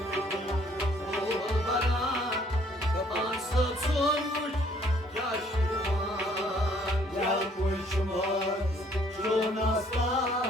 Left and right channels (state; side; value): normal; both; correlation 0.62